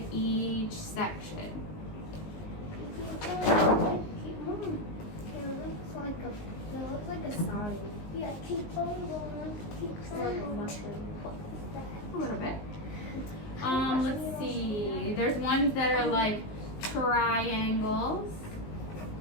each section. It looks like a star. Yeah, keep going, keep going. A little bit. Let's see. There's ones that are like triangles.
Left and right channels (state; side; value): late; right; 19 ms